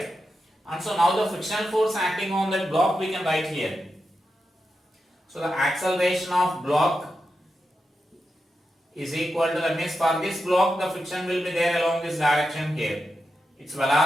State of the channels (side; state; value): both; normal; correlation 0.88